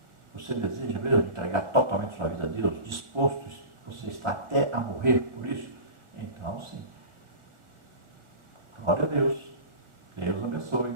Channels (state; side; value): late; left; 1.4 ms